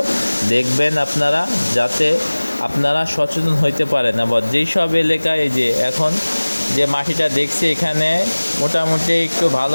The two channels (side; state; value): both; inverted; correlation -1.00